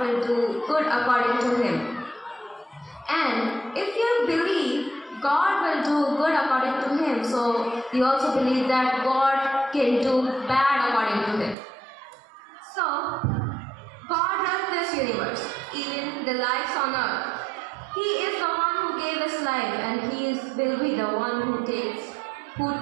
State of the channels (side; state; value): left; drops out; at 11.6 s